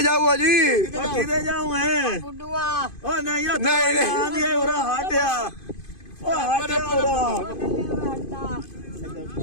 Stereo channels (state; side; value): late; right; 2.5 ms